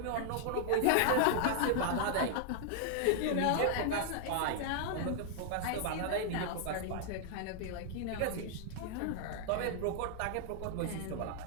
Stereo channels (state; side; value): different; both; correlation 0.00